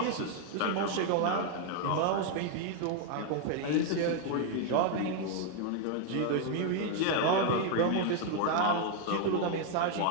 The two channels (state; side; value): different; both; correlation 0.00